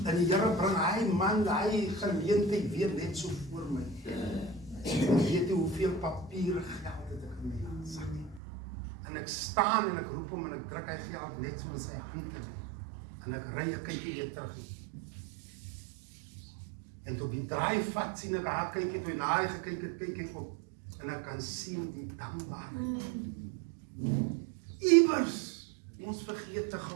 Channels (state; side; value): drops out; left; at 8.4 s